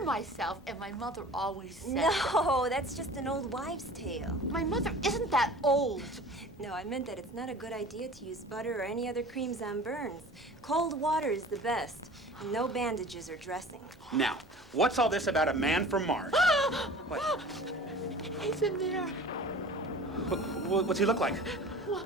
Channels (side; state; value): both; normal; correlation 0.42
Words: myself, and my mother always said that. No, that's just an old wives' tale. My mother isn't that old. No, I meant that it's not a good idea to use butter or any other creams on burns. Cold water is the best. And no bandages or dressing. Now, what's all this about a man from Mars? What? He's in there. What's he look like? Well,